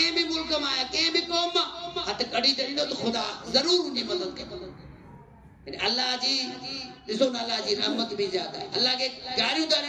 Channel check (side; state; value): both; identical; correlation 1.00